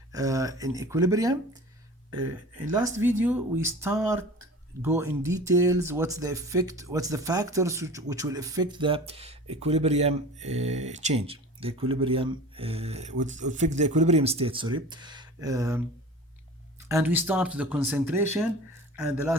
In equilibrium, in last video we go in details what's the effect, what's the factors which will affect the equilibrium change, the equilibrium would affect the equilibrium state, and we start the concentration, and the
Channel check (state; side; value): normal; both; correlation 0.39